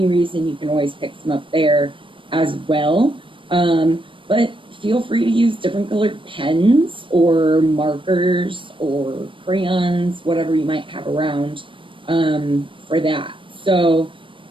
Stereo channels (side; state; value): left; late; 0.25 ms